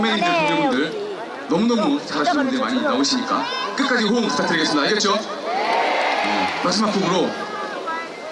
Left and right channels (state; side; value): identical; both; correlation 1.00